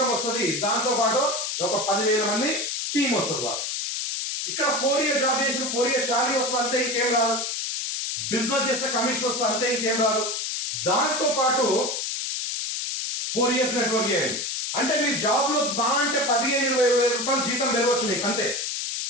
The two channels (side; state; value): left; noise; hiss, 2 dB below the sound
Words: వస్తుంది, దాంతో పాటు ఒక 10,000 మంది టీం వస్తుంది బాస్. ఇక్కడ 4 ఇయర్ జాబ్ చేసిన 4 ఇయర్స్ శాలరీ వస్తుంది, అంతే ఇంకేం రాదు. బిజినెస్ చేస్తే కమిషన్ వస్తుంది, అంతే ఇంకేం రాదు. దాంతో పాటు 4 ఇయర్స్ నెట్వర్క్ చేయండి. అంటే మీ జాబ్ లో అంటే 15-20 రూపాయలు జీతం పెరగవచ్చు మీకు, అంతే.